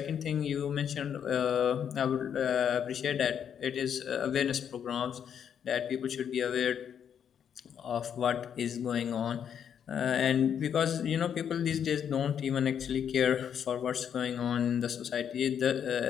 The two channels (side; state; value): right; quieter; 8.4 dB